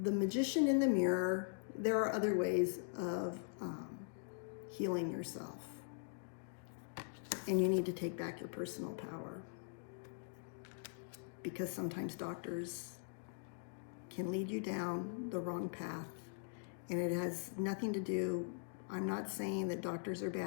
the magician in the mirror, there are other ways of healing yourself. And you need to take back your personal power. Because sometimes doctors can lead you down the wrong path. And it has nothing to do, I'm not saying that doctors are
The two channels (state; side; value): silent; right; digital silence